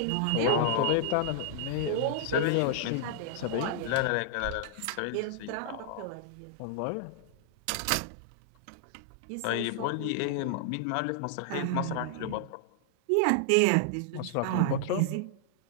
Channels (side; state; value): both; different; correlation -0.01